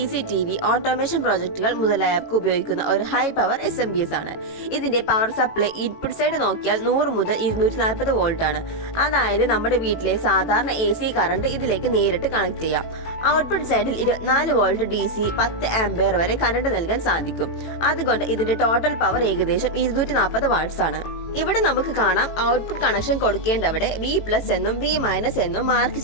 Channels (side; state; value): right; late; 18 ms